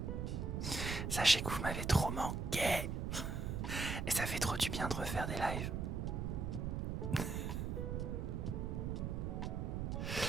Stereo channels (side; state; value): right; noise; rumble, 2 dB below the sound